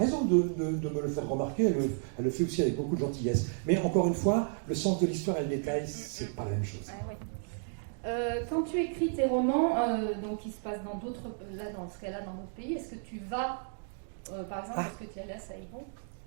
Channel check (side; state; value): left; silent; 56 dB below the other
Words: de me le faire remarquer, elle le fait aussi avec beaucoup de gentillesse. Mais encore une fois, le sens de l'histoire et le détail, c'est pas la même chose. Ah, oui. Quand tu écris tes romans, donc qui se passent dans d'autres, là dans ce cas-là, dans d'autres pays, est-ce que tu vas, par exemple, est-ce que tu es allé à Saïgon